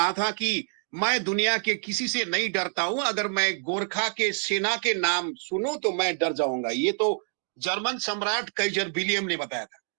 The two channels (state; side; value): silent; left; 60 dB below the other